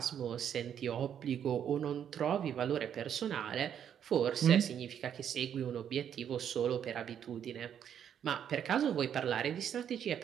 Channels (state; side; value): quieter; left; 9.0 dB